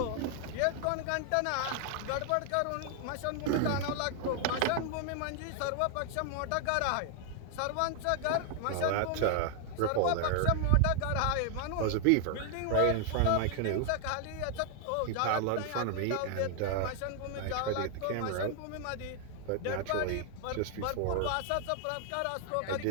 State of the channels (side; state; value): both; different; correlation 0.00